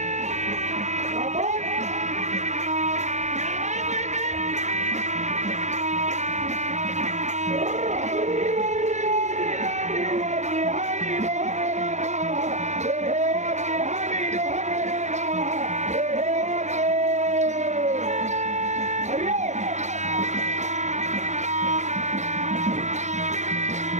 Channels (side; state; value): left; late; 0.34 ms